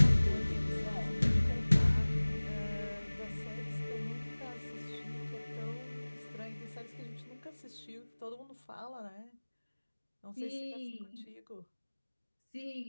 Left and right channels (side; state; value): both; inverted; correlation -1.00